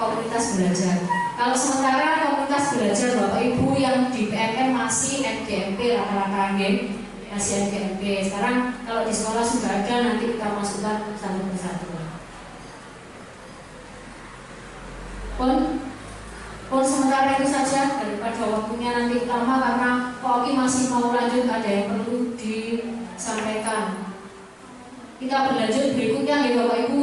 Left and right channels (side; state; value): both; identical; correlation 1.00